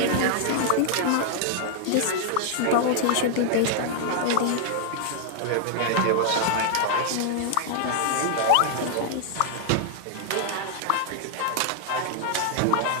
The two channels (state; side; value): different; both; correlation 0.00